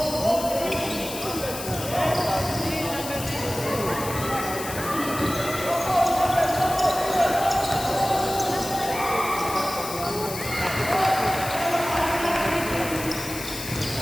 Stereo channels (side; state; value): left; noise; hiss, 9 dB below the sound